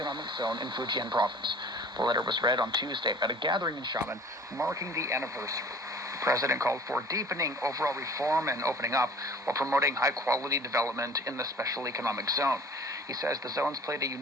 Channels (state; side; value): normal; both; correlation 0.46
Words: Zone in Fujian Province. The letter was read on Tuesday at a gathering in Xiamen marking the anniversary. The president called for deepening overall reform and opening up while promoting high-quality development in the Special Economic Zone. He says the zone's played a